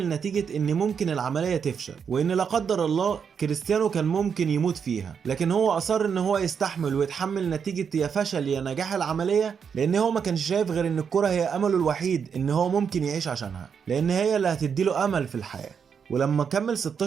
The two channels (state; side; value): quieter; left; 6.8 dB